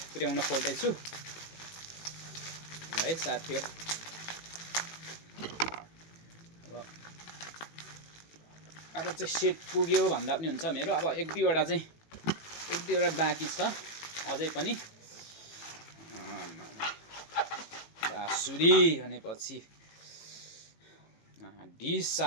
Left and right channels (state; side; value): late; right; 18 ms